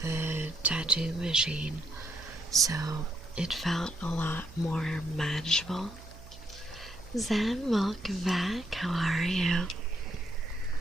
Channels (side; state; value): right; noise; hum, 17 dB below the sound